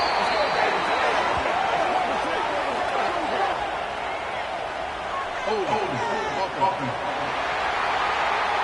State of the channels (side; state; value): both; identical; correlation 1.00